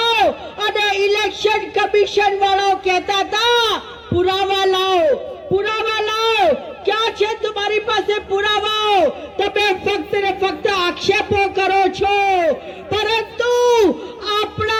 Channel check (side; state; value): both; identical; correlation 1.00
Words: અને ઇલેક્શન કમિશન વાળાઓ કહેતા હતા પુરાવા લાવો, પુરાવા લાવો। ક્યાં છે તમારી પાસે પુરાવાઓ? તમે ફક્ત ને ફક્ત આક્ષેપો કરો છો, પરંતુ